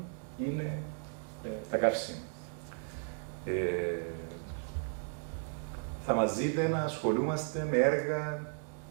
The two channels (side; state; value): left; silent; 54 dB below the other